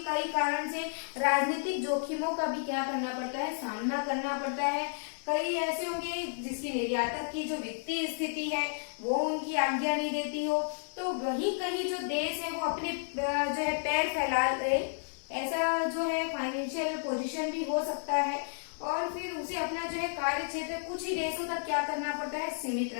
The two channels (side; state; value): right; silent; digital silence